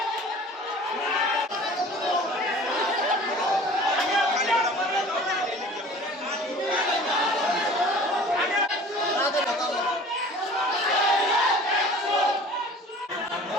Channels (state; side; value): normal; both; correlation 0.45